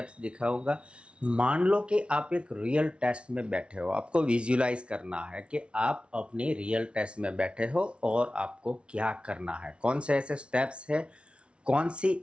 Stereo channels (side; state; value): left; late; 0.059 ms